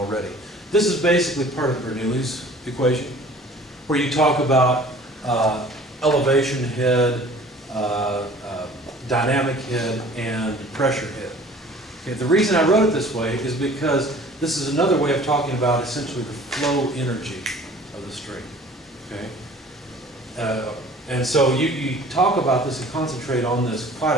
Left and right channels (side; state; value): both; normal; correlation 0.48